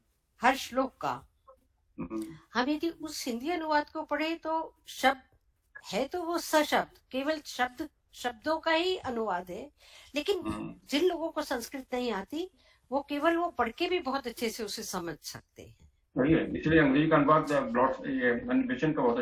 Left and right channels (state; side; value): identical; both; correlation 1.00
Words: हर श्लोक का। हम यदि उस हिंदी अनुवाद को पढ़े तो शब्द है तो वो सशब्द केवल शब्दों का ही अनुवाद है, लेकिन जिन लोगों को संस्कृत नहीं आती वो केवल वो पढ़ के भी बहुत अच्छे से उसे समझ सकते हैं। वही है, इसलिए अंग्रेजी का अनुवाद एनिमेशन का बहुत